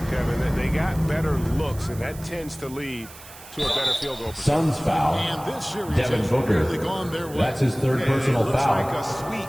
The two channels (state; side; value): noise; right; hiss, 18 dB below the sound